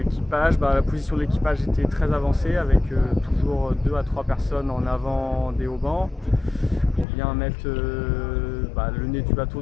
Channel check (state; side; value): drops out; right; at 7.1 s